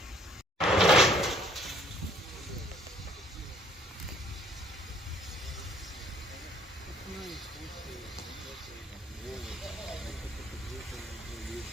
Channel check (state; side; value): normal; both; correlation 0.60